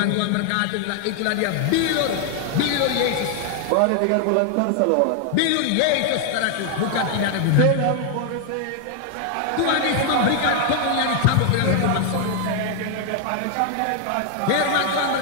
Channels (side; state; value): both; different; correlation 0.00